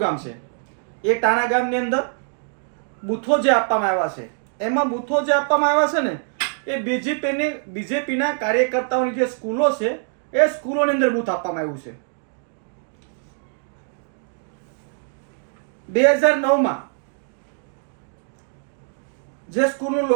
છે. એ ટાણા ગામની અંદર બૂથો જે આપવામાં આવ્યા છે, એમાં બૂથો જે આપવામાં આવ્યા છે ને એ બીજેપીના કાર્યકર્તાઓની જે સ્કૂલો છે એ સ્કૂલોની અંદર બૂથ આપવામાં આવ્યું છે. 2009માં જે સ્કૂલનું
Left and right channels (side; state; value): left; silent; 63 dB below the other